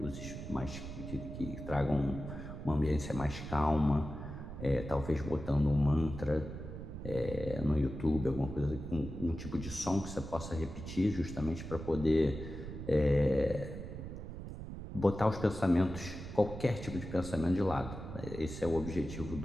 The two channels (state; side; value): noise; right; rumble, 9 dB below the sound